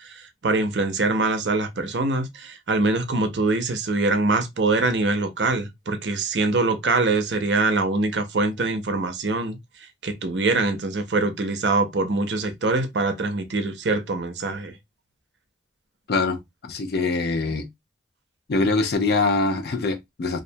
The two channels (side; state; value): both; normal; correlation 0.30